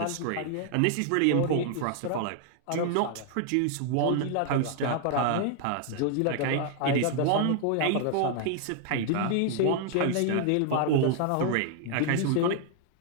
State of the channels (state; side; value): different; both; correlation 0.00